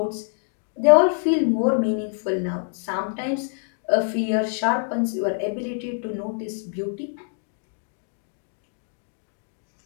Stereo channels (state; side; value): silent; right; 62 dB below the other